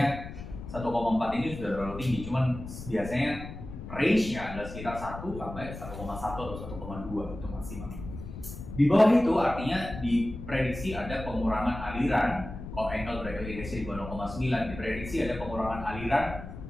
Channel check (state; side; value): noise; left; rumble, 10 dB below the sound